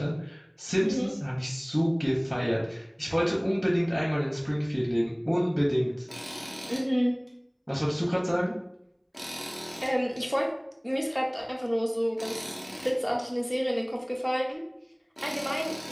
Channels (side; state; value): both; identical; correlation 1.00